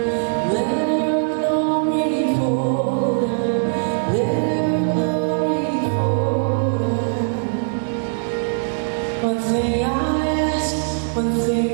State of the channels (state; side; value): silent; left; digital silence